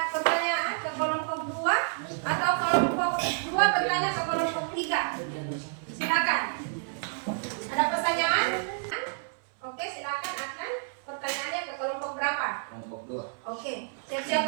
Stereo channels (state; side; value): silent; left; 58 dB below the other